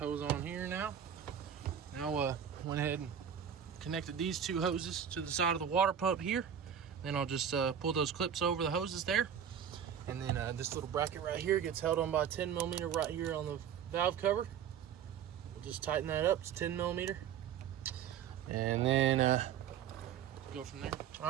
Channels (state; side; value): quieter; left; 8.5 dB